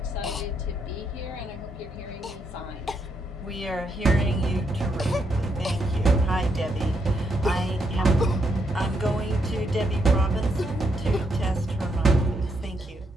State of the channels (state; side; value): normal; both; correlation 0.78